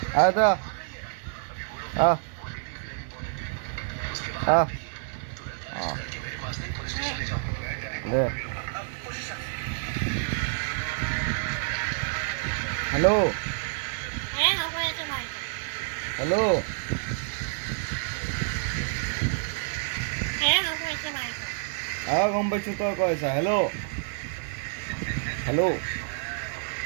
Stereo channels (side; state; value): left; silent; digital silence